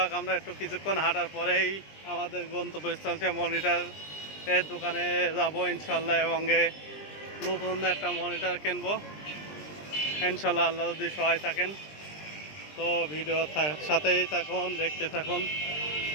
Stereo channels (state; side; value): late; right; 20 ms